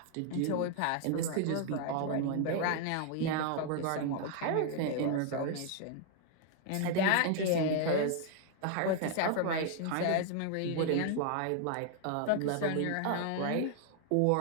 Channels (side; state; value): both; different; correlation 0.00